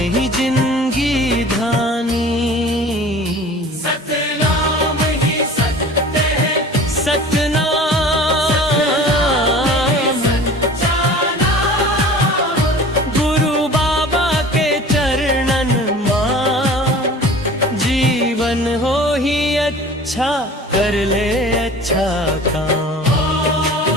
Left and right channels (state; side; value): normal; both; correlation 0.43